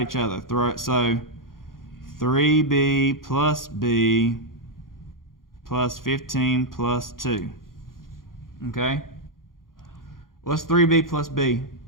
each other. So 3b plus b plus 15 plus 2. Okay? What's 3b plus b?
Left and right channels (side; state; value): right; late; 0.91 ms